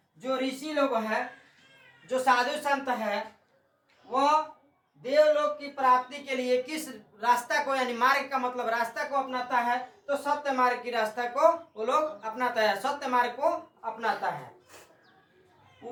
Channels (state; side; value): identical; both; correlation 1.00